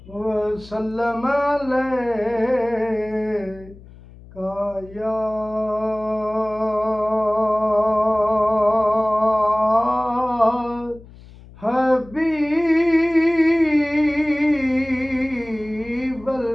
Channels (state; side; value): noise; left; hum, 21 dB below the sound